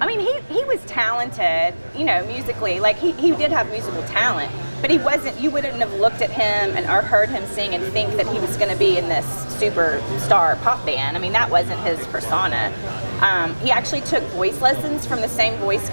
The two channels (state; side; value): inverted; both; correlation -1.00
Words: I mean, he was talented, musically. He did have musical talent, but he wasn't, you wouldn't have looked at him or heard him sing and think that he was going to be in this superstar pop band. I mean, that wasn't his persona. He actually took voice lessons from the same voice